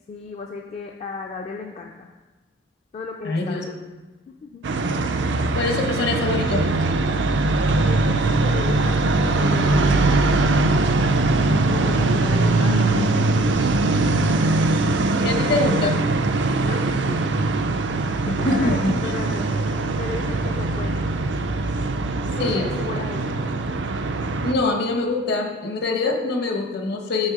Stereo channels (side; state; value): both; normal; correlation 0.53